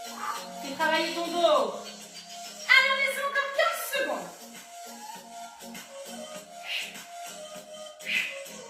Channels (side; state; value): both; identical; correlation 1.00